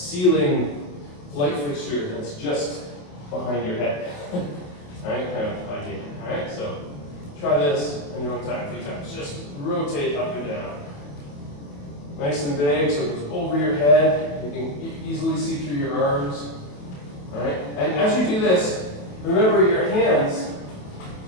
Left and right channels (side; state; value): right; late; 28 ms